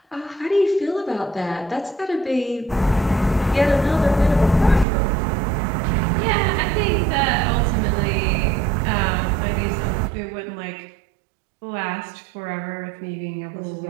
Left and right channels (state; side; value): drops out; left; at 4.9 s